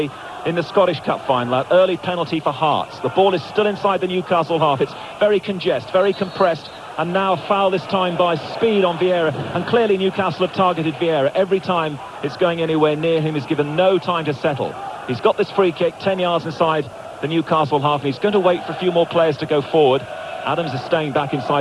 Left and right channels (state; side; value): identical; both; correlation 1.00